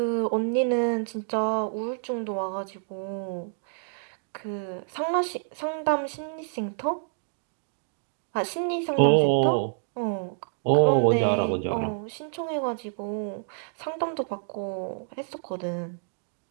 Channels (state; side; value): silent; left; digital silence